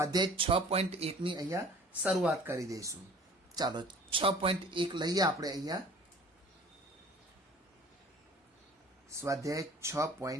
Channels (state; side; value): normal; both; correlation 0.47